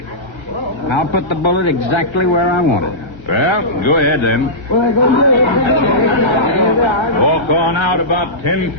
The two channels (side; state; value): right; late; 1.3 ms